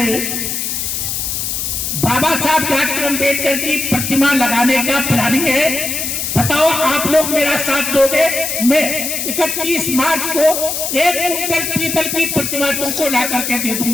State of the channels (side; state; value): left; noise; hiss, 2 dB below the sound